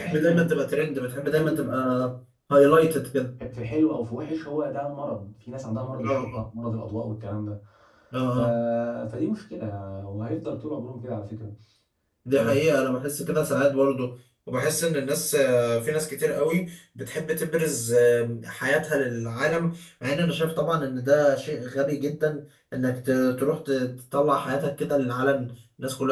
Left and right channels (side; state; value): both; identical; correlation 1.00